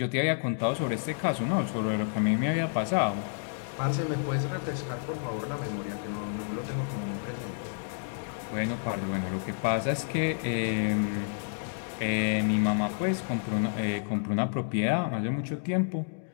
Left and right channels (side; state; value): right; silent; digital silence